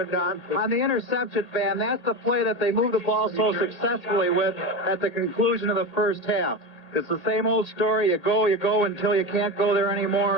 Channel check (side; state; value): right; late; 1.8 ms